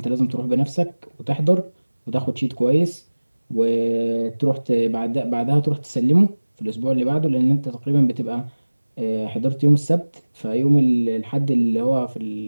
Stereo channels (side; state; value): both; inverted; correlation -1.00